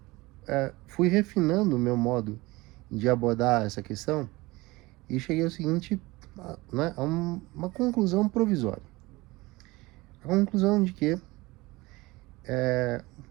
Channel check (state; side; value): quieter; left; 21.5 dB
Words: fui refinando o meu modo de abordar essa questão e cheguei ao seguinte, a uma conclusão provisória. A conclusão de que é